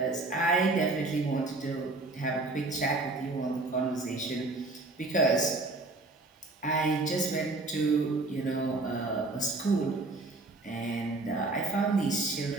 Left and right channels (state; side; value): quieter; left; 3.2 dB